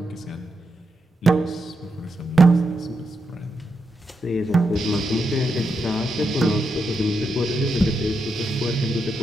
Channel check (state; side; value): normal; both; correlation 0.84